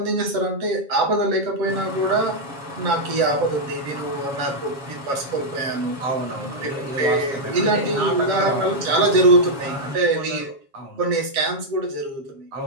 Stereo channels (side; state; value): left; late; 7.3 ms